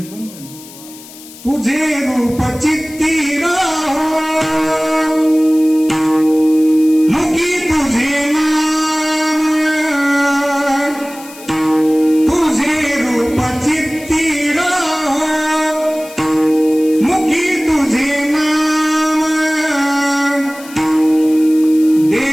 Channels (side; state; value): left; noise; hiss, 19 dB below the sound